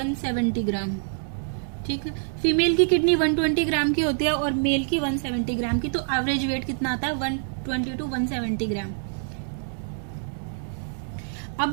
ग्राम। ठीक है, फीमेल की किडनी 120 ग्राम की होती है और मेल की 170 ग्राम की, तो एवरेज वेट कितना आता है? 120 to 170 ग्राम।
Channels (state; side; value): silent; left; 61 dB below the other